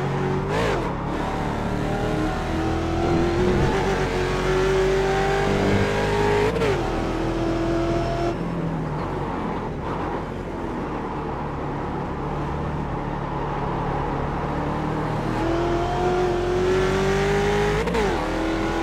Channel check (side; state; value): both; identical; correlation 1.00